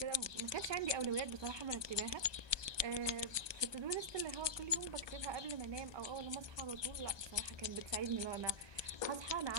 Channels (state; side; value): late; left; 1.2 ms